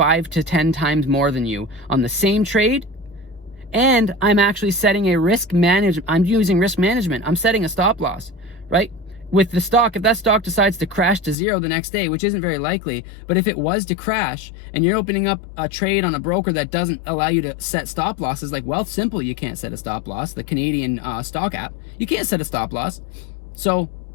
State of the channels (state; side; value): drops out; right; at 11.4 s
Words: to 10 times more than you on the same trade, and I'm actually setting a risk management. I'm using risk management. I'm setting a stop loss, right? With the stock, if that stock decides to crash to zero the next day, which isn't very likely, but if it was to crash and you're opening up a trade on a broker that doesn't allow you to set stop losses, like Wealthsimple, you can't set a stop loss, the Canadian stock app, you can't set a stop loss. So